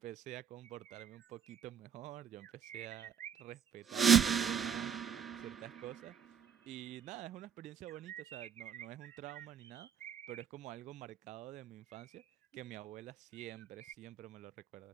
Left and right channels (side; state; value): left; quieter; 8.0 dB